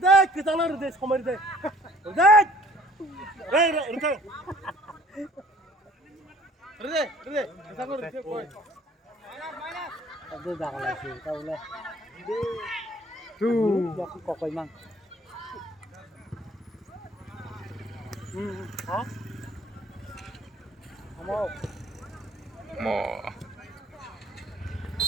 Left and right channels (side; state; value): both; normal; correlation 0.55